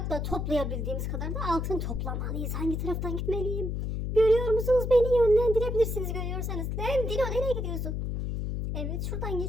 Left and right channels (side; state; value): left; noise; hum, 2 dB below the sound